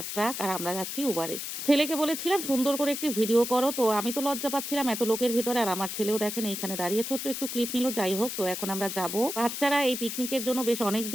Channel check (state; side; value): noise; left; hiss, 5 dB below the sound